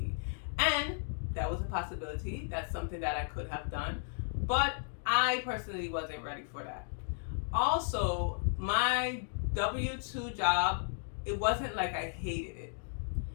And that was a possibility. That's something that I could have done, but I personally wasn't ready for that. Also, my W-2 job, it wasn't like I hated it.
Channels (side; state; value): right; silent; digital silence